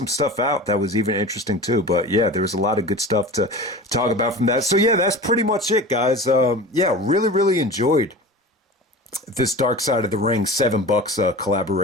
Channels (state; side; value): normal; both; correlation 0.34